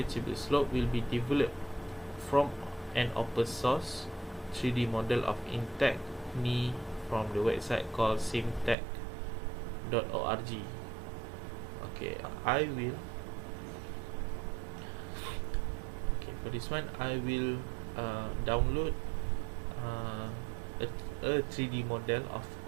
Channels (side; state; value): left; drops out; at 8.8 s